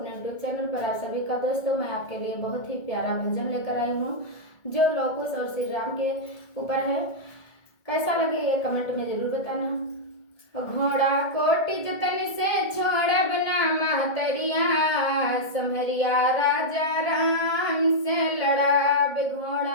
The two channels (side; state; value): right; late; 1.8 ms